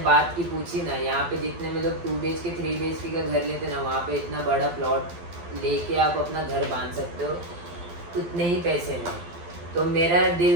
की पूछी ना, यहाँ पे जितने में लोग 2 BHK 3 BHK का घर लेते ना, वहाँ पे इतना बड़ा प्लॉट लेके आप अपना घर बांध सकते हो उतने ही पैसे में। तो मेरा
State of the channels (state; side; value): late; left; 12 ms